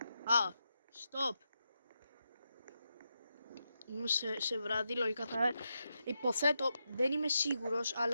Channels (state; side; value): inverted; both; correlation -0.86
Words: Stop. Είμαι σε βράδυ, λογικά θα... Υποθέτω, δεν είμαι σίγουρος,